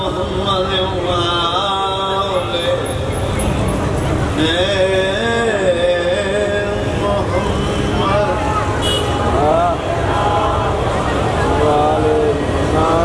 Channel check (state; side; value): identical; both; correlation 1.00